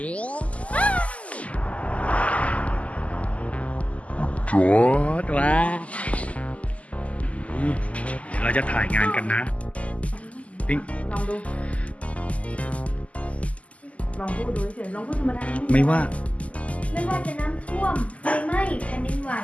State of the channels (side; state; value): right; late; 0.068 ms